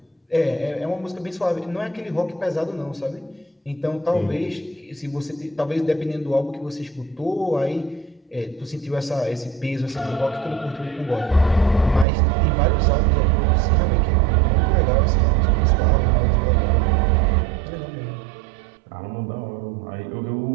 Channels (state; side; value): drops out; left; at 12.1 s